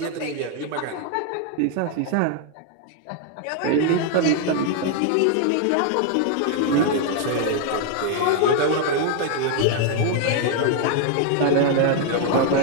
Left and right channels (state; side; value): different; both; correlation 0.00